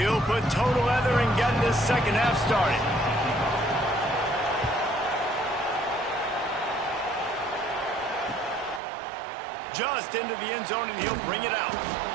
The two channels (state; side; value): drops out; left; at 8.8 s